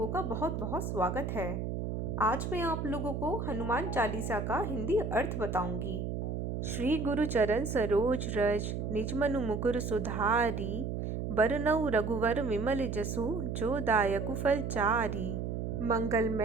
का बहुत बहुत स्वागत है। आज मैं आप लोगों को हनुमान चालीसा का हिंदी अर्थ बताऊंगी। श्री गुरु चरण सरोज रज निज मनु मुकुर सुधारी, बरनउँ रघुवर विमल जसु जो दायकु फल चारी।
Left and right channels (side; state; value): right; noise; hum, 3 dB below the sound